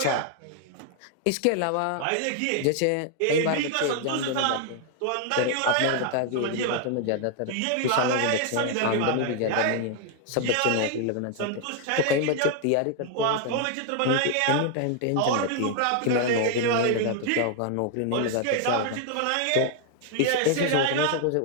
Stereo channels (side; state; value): both; different; correlation 0.00